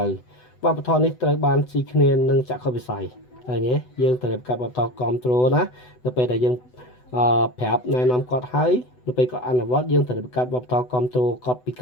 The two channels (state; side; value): late; right; 8.0 ms